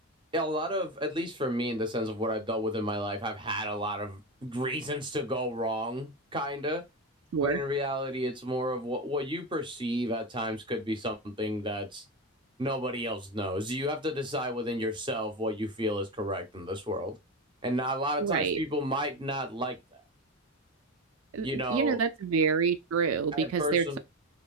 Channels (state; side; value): normal; both; correlation 0.16